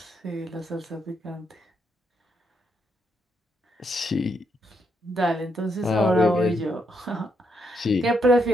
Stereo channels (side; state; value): both; normal; correlation 0.77